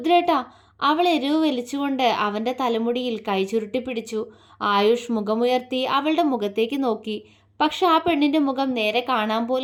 അവൾ എരിവ് വലിച്ചുകൊണ്ട് അവൻ്റെ തലമുടിയിൽ കൈ ചുരുട്ടി പിടിച്ചു. ആയുഷ് മുഖമുയർത്തി അവളുടെ മുഖത്തേക്ക് നോക്കി. പക്ഷെ ആ പെണ്ണിൻ്റെ മുഖം നേരെ കാണാൻ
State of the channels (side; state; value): both; identical; correlation 1.00